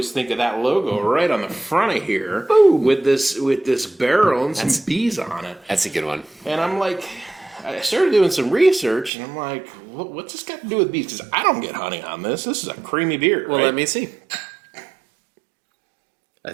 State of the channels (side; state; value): left; drops out; at 9.1 s